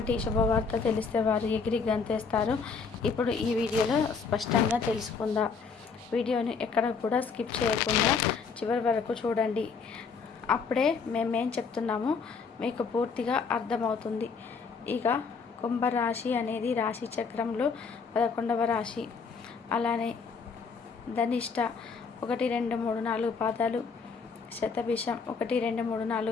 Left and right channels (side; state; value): right; quieter; 5.3 dB